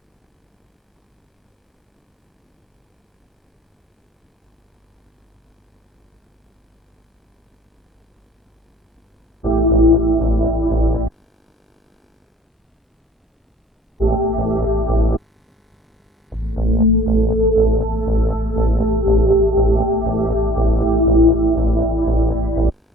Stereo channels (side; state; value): both; normal; correlation 0.54